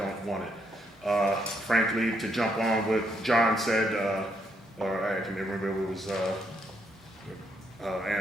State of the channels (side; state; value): both; normal; correlation 0.75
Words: want it. Frankly, to jump on what John said, or I can remember it was